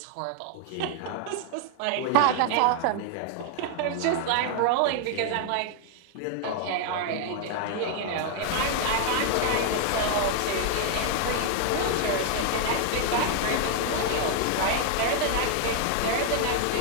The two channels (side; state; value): both; different; correlation 0.00